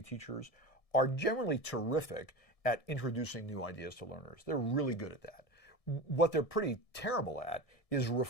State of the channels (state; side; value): late; right; 1.7 ms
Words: teachers are generally terrific at introducing new ideas to learners. They're really good at that. What they're pretty terrible at is